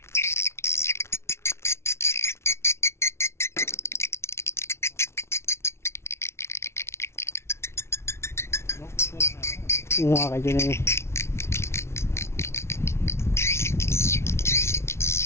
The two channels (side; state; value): right; late; 0.13 ms